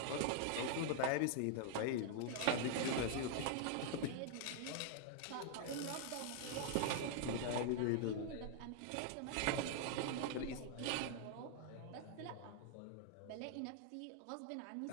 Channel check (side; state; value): both; different; correlation 0.00